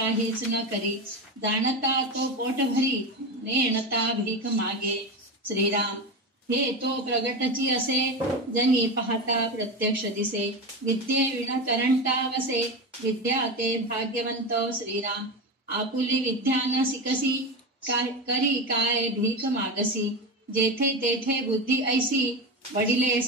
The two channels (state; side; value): normal; both; correlation 0.20